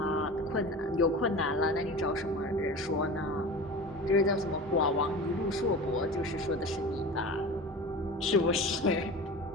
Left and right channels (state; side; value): normal; both; correlation 0.33